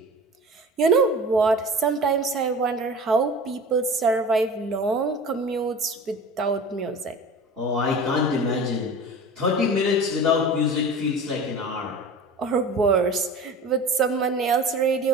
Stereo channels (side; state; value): both; normal; correlation 0.37